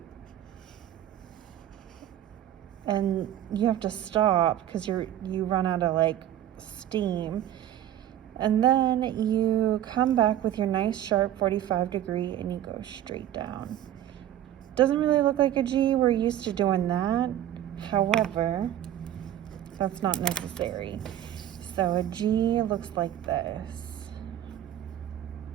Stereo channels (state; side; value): quieter; left; 11.8 dB